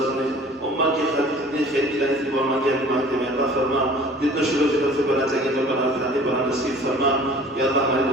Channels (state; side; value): normal; both; correlation 0.48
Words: نے امت کی خاطر جتنی خیر کی لائی تھی وہ امت کی حکمت میں عطا فرما، جتنا شروع فکر سے بنا چاہیے تو بنا کرانے بنا نصیب فرما۔ یا اللہ ہماری